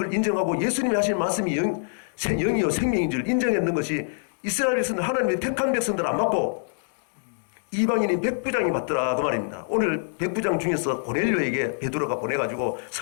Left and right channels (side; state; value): right; silent; digital silence